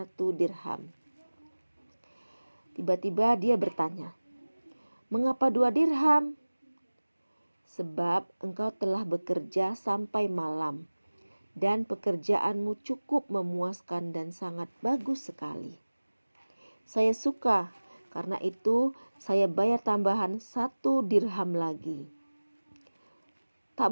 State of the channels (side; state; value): both; inverted; correlation -1.00